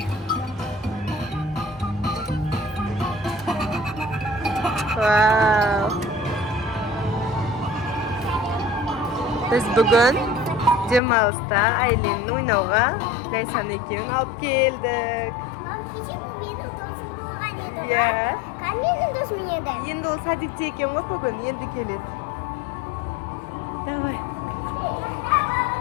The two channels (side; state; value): right; drops out; at 11.0 s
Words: Wow. Biz bugün Cemal'sta Aylin'in oynauga Laysan ekevini alıp geldik. Ya. Endi o sadikçi eken ғой bugün, endi keledi. Давай.